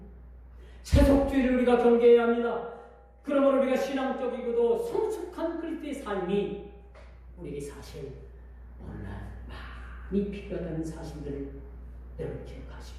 세속주의를 우리가 경계해야 합니다. 그러므로 우리가 신앙적이고도 성숙한 그리스도의 삶이 우리에게 사실 오늘날 많이 필요하다는 사실들을 여러분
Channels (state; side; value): identical; both; correlation 1.00